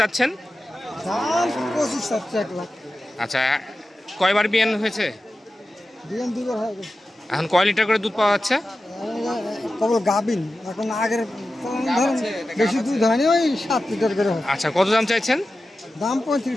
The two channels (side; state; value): both; normal; correlation 0.93